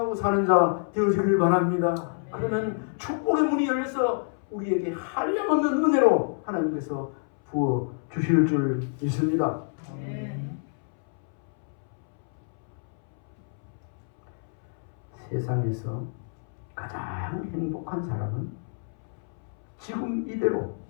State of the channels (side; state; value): right; silent; 60 dB below the other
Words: 사는 자 되어지길 바랍니다. 그러면 축복의 문이 열려서 우리에게 한량없는 은혜로 하나님께서 부어 주실 줄 믿습니다. 세상에서 가장 행복한 사람은 지금 이대로